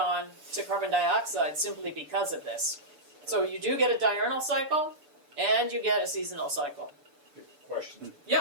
to carbon dioxide simply because of this. So you do get a diurnal cycle and you get a seasonal cycle. Question.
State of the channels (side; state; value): left; late; 6.8 ms